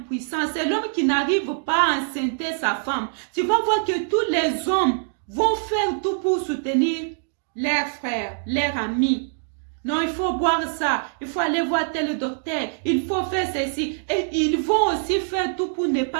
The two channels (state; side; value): silent; left; digital silence